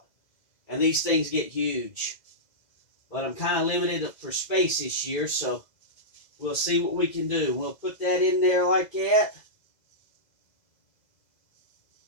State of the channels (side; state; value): right; late; 2.0 ms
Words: and these things get huge. But I'm kind of limited for space this year, so we'll see what we can do. We'll put that in there like that.